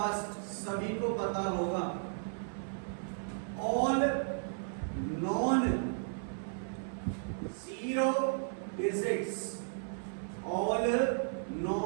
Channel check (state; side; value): silent; left; 55 dB below the other